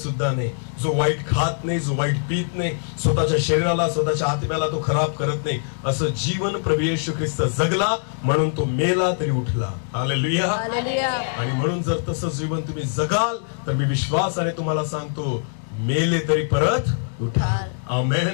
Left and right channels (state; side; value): silent; right; digital silence